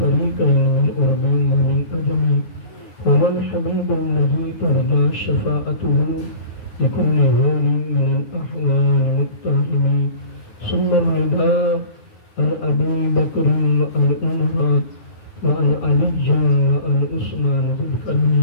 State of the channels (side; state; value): right; late; 9.3 ms